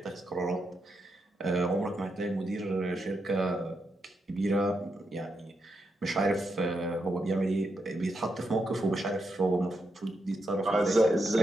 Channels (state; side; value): normal; both; correlation 0.84